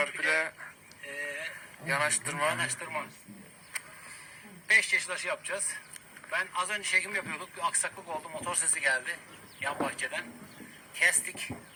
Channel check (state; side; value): identical; both; correlation 1.00